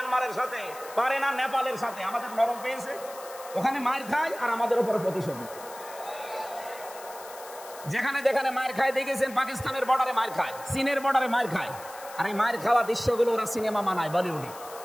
সাথে, পারে না নেপালের সাথে। আমাদের নরম পেয়েছে, ওখানে মার খায় আর আমাদের উপরে প্রতিশোধ। যেখানে যেখানে মার খায় দেখেছেন, পাকিস্তানের বর্ডারে মার খায়, চীনের বর্ডারে মার খায়। আর এই মার খাওয়া দৃশ্যগুলো ওরা সিনেমা বানায় বলিউডে।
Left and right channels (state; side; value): noise; left; hiss, 17 dB below the sound